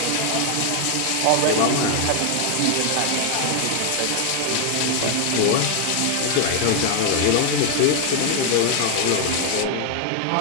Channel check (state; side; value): different; both; correlation 0.00